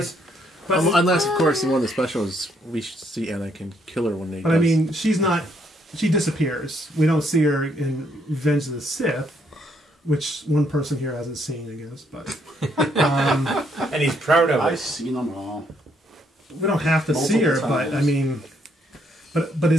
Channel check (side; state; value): both; normal; correlation 0.71